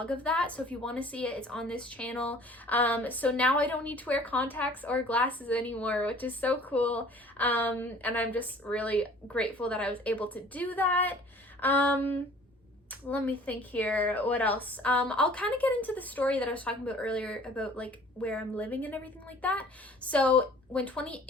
of that. So if you want to see it, it's on this channel. So now I don't need to wear contacts or glasses anymore, which is so cool. And I'm just really grateful that I was able to do that. Let me think here. What else? I'll kind of get into the story that I was talking about earlier about like where I'm living and everything like that. So in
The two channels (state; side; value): normal; both; correlation 0.51